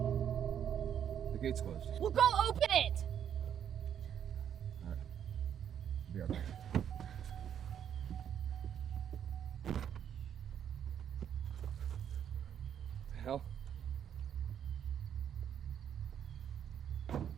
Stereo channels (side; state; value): left; quieter; 9.1 dB